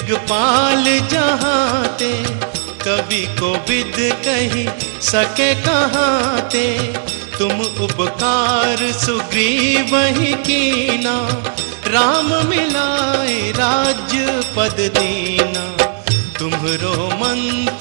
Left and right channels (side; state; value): left; silent; digital silence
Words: जहाते, कवि को विद कही सके कहाते। तुम उपकार सुग्रीवहि कीना, राम मिलाए राज्य पद दीना। तुम्हरो